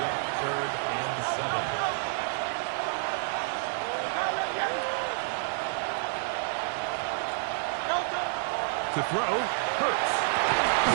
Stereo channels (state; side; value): silent; left; digital silence